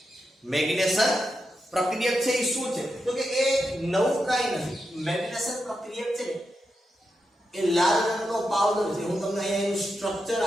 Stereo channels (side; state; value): both; normal; correlation 0.87